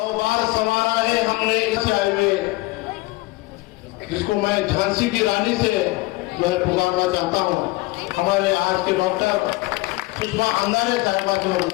बार संवारा है हमने चाय में, जिसको मैं झांसी की रानी से जो है पुकारना चाहता हूँ। हमारे आज के डॉक्टर सुषमा अंगारे साहिबा की मैं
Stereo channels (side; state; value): right; quieter; 21.4 dB